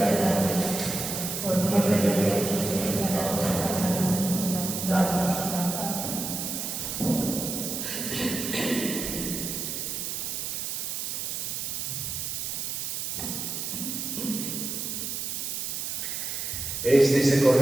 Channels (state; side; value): noise; right; hiss, 3 dB below the sound